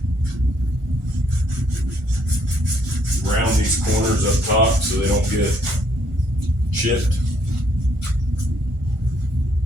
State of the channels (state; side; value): late; left; 1.4 ms